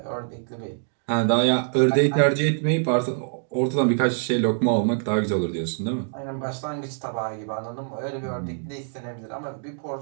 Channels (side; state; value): left; silent; digital silence